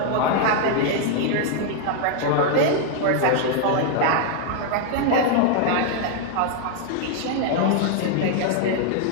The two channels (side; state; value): both; different; correlation 0.00